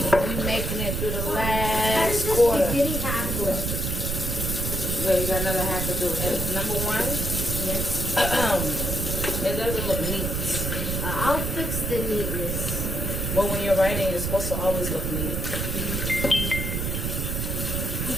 we're making it through the last quarter. Spaghetti half left. Yeah, you got another half to do. And number one, Yes. it doesn't look neat. I'll fix the neatness. Well, when you're writing, it's supposed to always look neat. You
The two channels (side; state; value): right; noise; rumble, 2 dB below the sound